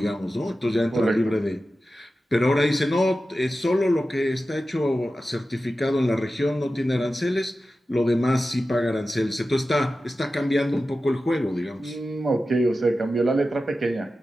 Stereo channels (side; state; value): both; normal; correlation 0.93